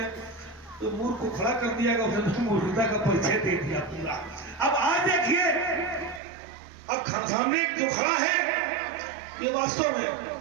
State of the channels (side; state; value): left; drops out; at 6.2 s